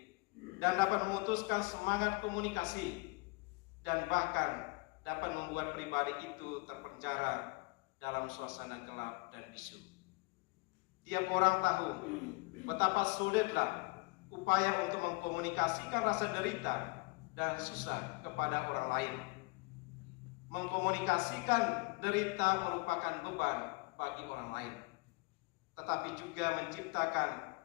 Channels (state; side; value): quieter; right; 26.6 dB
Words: dan dapat memutuskan semangat komunikasi, dan bahkan dapat membuat pribadi itu terpenjara dalam suasana gelap dan bisu. Tiap orang tahu betapa sulitlah upaya untuk mengkomunikasikan rasa derita dan susah kepada orang lain. Mengkomunikasikan derita merupakan beban bagi orang lain, tetapi juga menciptakan